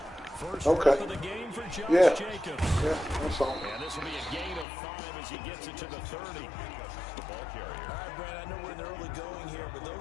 First Okay. of the game for Josh Jacobs. Yeah, that's all. And this will be a gain of 5 as he gets it to the 30. The ball carrier. All right, Brad, I know we're in the early going here, but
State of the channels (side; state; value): right; drops out; at 4.7 s